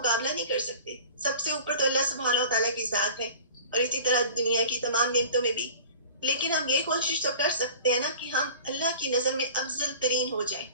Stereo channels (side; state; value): both; inverted; correlation -0.41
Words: نہیں کر سکتے. سب سے اوپر تو اللہ سبحانہ و تعالیٰ کی ذات ہے، اور اسی طرح دنیا کی تمام نعمتوں میں بھی. لیکن ہم یہ کوشش تو کر سکتے ہیں نا کہ ہم اللہ کی نظر میں افضل ترین ہو جائیں.